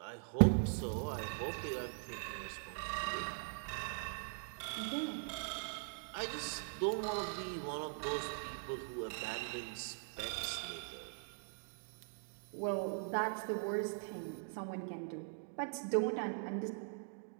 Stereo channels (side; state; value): left; silent; digital silence